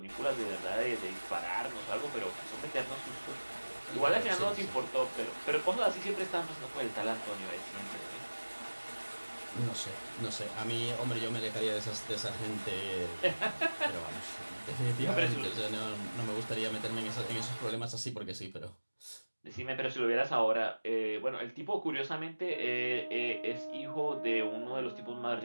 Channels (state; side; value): inverted; both; correlation -1.00